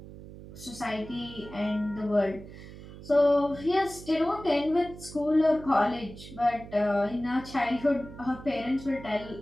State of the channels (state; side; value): noise; right; hum, 15 dB below the sound